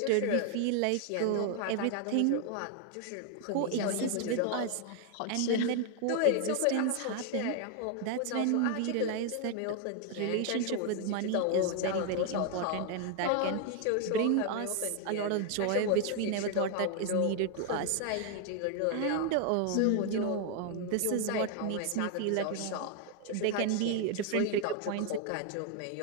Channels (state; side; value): different; both; correlation 0.00